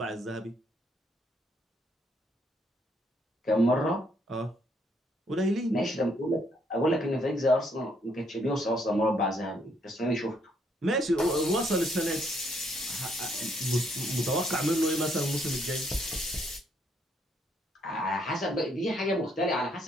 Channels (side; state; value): both; normal; correlation 0.71